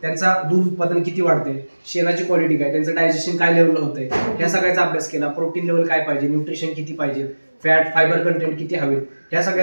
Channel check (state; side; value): inverted; both; correlation -1.00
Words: त्यांचा दूध उत्पादन किती वाढते, शेणाची क्वालिटी काय, त्यांचं डायजेशन काय लेवलला होतंय, ह्या सगळ्याचा अभ्यास केला, प्रोटीन लेवल काय पाहिजे, न्यूट्रिशन किती पाहिजे, फॅट फायबर कंटेंट किती हवे, या